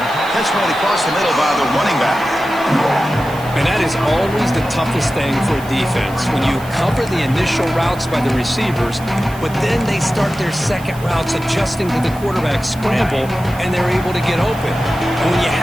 Catch made across the middle by the running back. And that is always the toughest thing for a defense, when you cover the initial routes by the receivers, but then they start their second routes adjusting to the quarterback scramble, and they're able to get open. And when you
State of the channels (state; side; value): noise; right; hiss, 20 dB below the sound